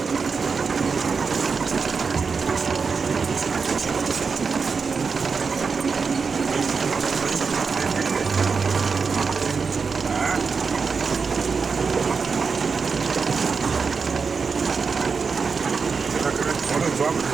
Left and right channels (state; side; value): quieter; left; 5.2 dB